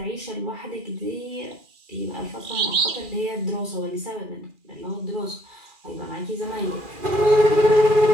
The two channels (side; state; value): left; late; 2.4 ms